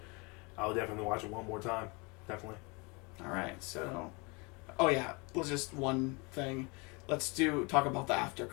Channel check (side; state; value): right; quieter; 29.0 dB